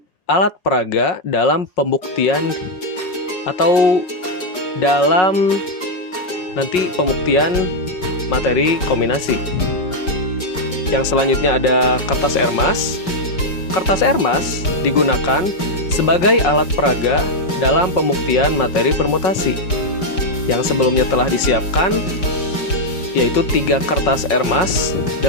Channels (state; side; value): late; right; 5.5 ms